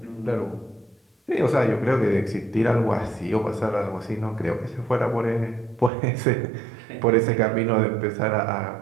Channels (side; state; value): left; drops out; at 5.9 s